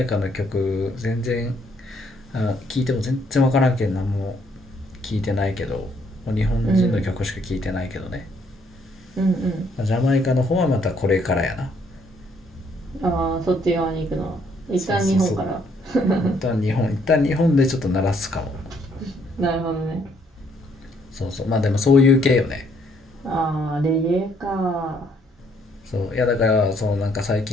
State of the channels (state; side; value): normal; both; correlation 0.68